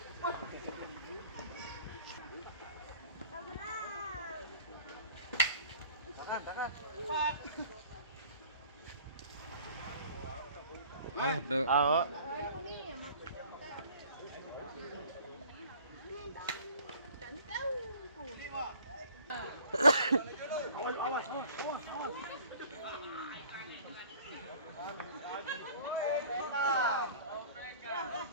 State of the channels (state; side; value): inverted; both; correlation -0.49